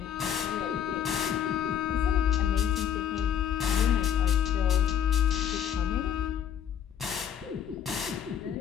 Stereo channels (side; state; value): right; quieter; 8.9 dB